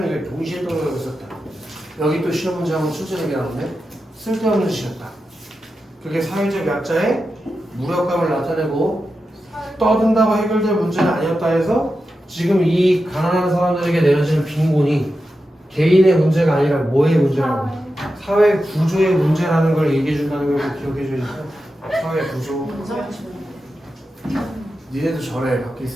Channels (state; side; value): normal; both; correlation 0.90